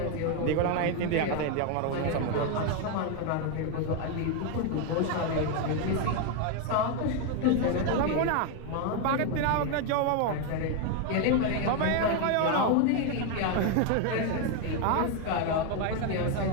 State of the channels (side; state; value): both; different; correlation 0.01